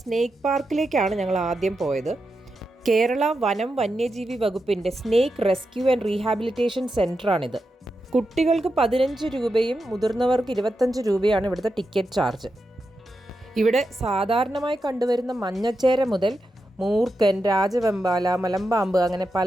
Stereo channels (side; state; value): both; normal; correlation 0.88